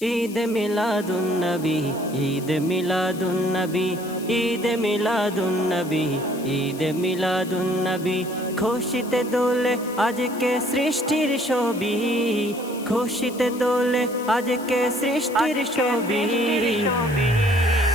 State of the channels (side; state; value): left; noise; hiss, 17 dB below the sound